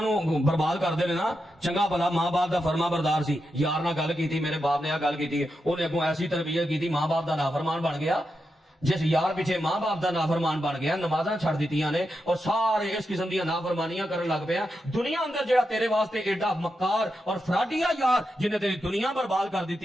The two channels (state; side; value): normal; both; correlation 0.87